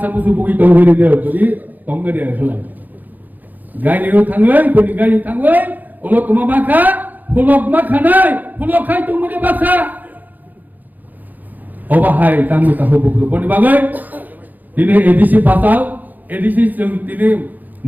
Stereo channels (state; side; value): late; left; 0.083 ms